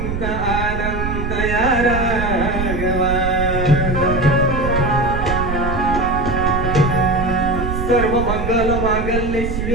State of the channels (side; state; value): right; noise; rumble, 4 dB below the sound